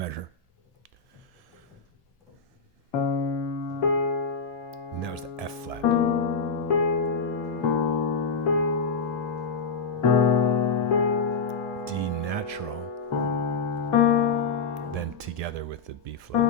And that was the F flat. D natural. Then together with the B flat.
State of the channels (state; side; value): quieter; right; 5.0 dB